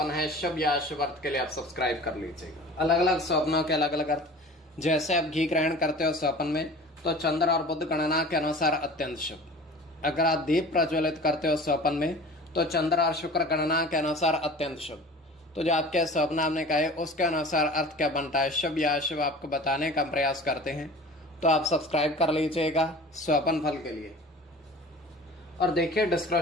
है शुभ या अशुभ अर्थ के लिए आप सब्सक्राइब कर लीजिएगा। अलग अलग स्वप्नों के अलग अलग अर्थ। जैसे आप घी ग्रहण करते हो स्वप्न में, तो चंद्र और बुध गणना के अनुसार अत्यंत शुभ। अगर आप दीप प्रज्वलित करते हो स्वप्न में, तो चंद्र और शुक्र गणना के अनुसार अत्यंत शुभ। तो जो आपके स्वप्न आपने कहे उसके अनुसार अर्थ क्या बनता है, शुभ या अशुभ, आपको बताने का प्रयास करते हैं। तो आप सब्सक्राइब कर लीजिएगा स्वप्न फल के लिए। और देखिए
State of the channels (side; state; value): both; normal; correlation 0.41